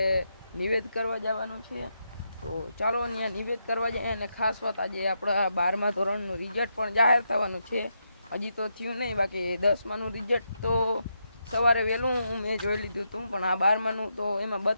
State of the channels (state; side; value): inverted; both; correlation -0.82